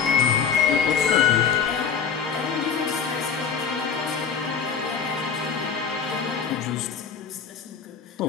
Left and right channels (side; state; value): right; quieter; 6.7 dB